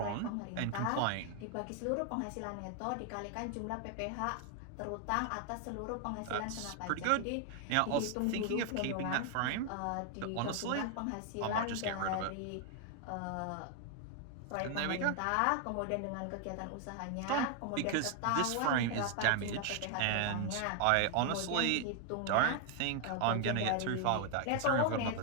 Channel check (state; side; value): different; both; correlation 0.00